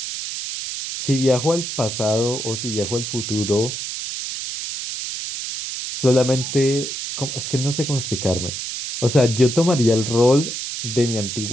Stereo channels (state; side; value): noise; right; hiss, 5 dB below the sound